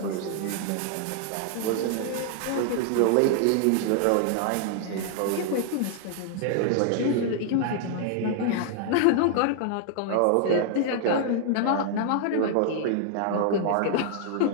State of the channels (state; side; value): different; both; correlation 0.00